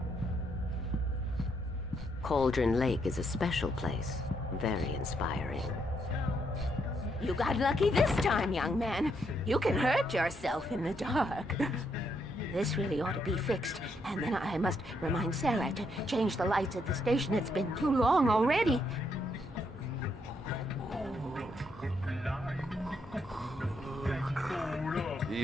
Cauldron Lake is a special place. Very inspiring. You got lucky this time, young man. You can hurt yourself in the dark. This really ought to be fixed. And then I must remind Sarah to change the lights at the station. It's been too long already.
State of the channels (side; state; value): both; normal; correlation 0.76